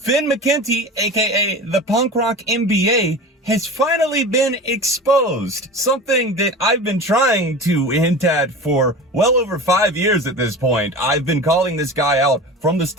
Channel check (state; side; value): normal; both; correlation 0.33